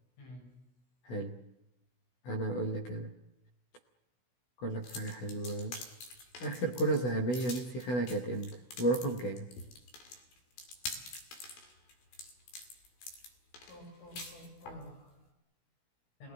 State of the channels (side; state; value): right; late; 16 ms